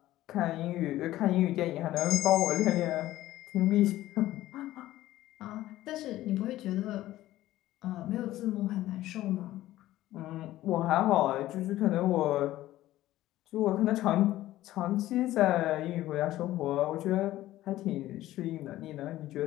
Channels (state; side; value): quieter; right; 15.1 dB